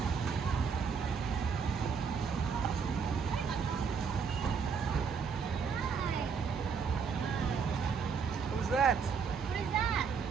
Who's that? What is that?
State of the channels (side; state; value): left; quieter; 5.9 dB